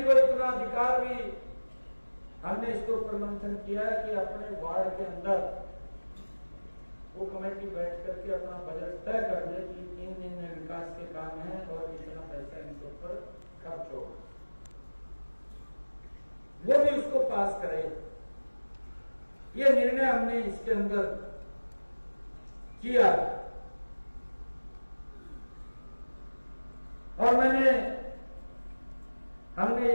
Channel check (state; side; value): inverted; both; correlation -1.00